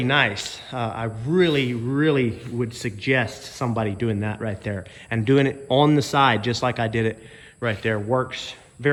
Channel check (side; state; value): both; identical; correlation 1.00